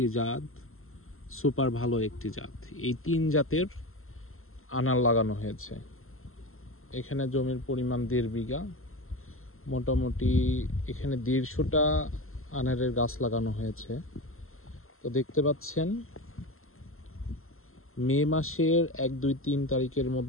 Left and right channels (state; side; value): late; right; 0.62 ms